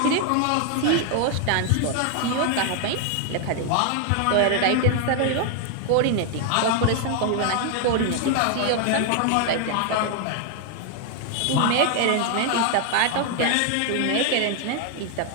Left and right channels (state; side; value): different; both; correlation 0.00